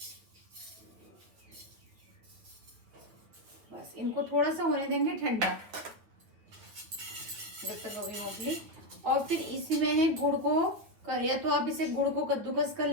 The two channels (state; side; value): late; left; 9.2 ms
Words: बस इनको थोड़ा सा होने देंगे ठंडा जब तक अभी मूंगफली। और फिर इसी में है गुड़ को कर, या तो आप इसे गुड़ को कद्दूकस कर